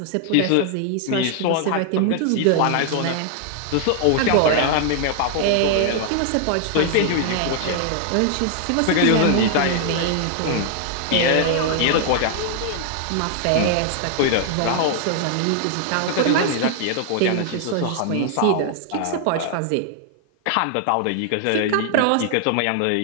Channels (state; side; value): different; both; correlation 0.00